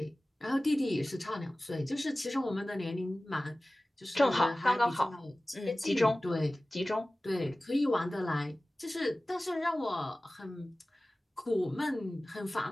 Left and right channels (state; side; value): normal; both; correlation 0.97